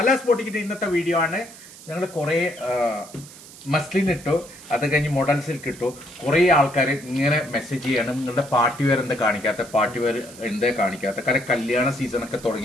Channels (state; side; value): noise; right; hiss, 18 dB below the sound